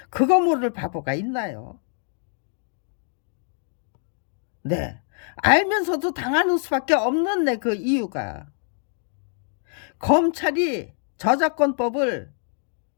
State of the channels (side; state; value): right; silent; 56 dB below the other